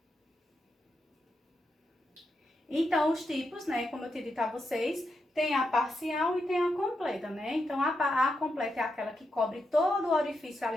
Então, os tipos, né, como eu tinha dito a vocês, tem a parcial e tem a completa, né? Então, a completa é aquela que cobre todo o orifício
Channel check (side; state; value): both; normal; correlation 0.85